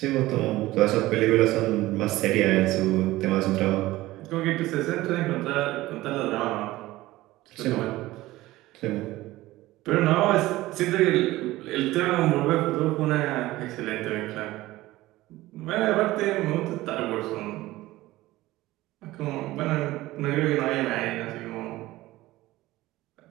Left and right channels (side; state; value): left; quieter; 17.5 dB